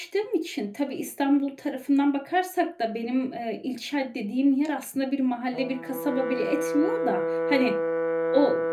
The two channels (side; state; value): both; identical; correlation 1.00